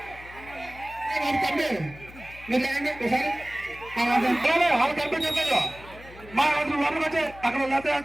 కంపి మీరు లేకండి ఒకసారి వాళ్ళు కంపి చెప్పారు మా వరకు వచ్చి అక్కడ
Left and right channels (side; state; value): left; noise; hum, 19 dB below the sound